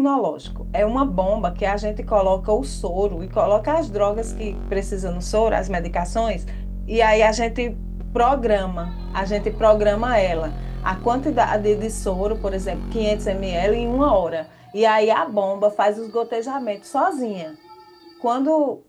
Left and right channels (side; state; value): both; identical; correlation 1.00